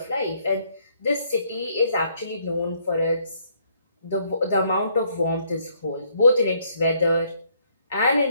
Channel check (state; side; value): inverted; both; correlation -0.68